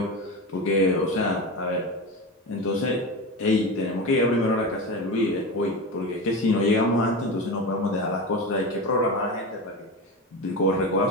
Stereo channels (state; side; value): normal; both; correlation 0.23